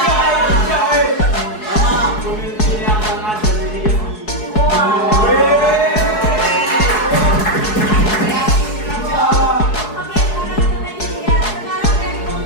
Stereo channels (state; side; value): late; right; 4.7 ms